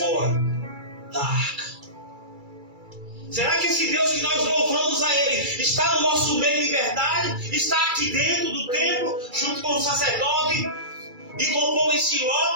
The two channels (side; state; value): left; late; 2.3 ms